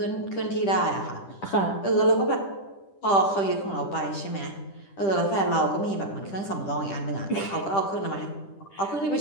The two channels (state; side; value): late; right; 10 ms